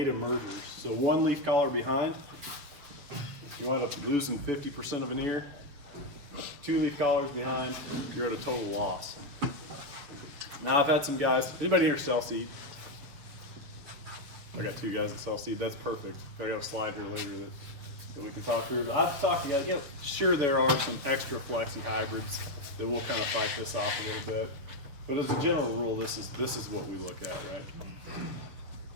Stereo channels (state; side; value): late; left; 7.3 ms